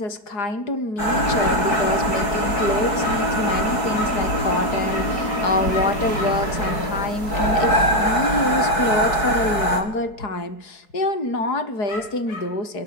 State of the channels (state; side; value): late; right; 4.6 ms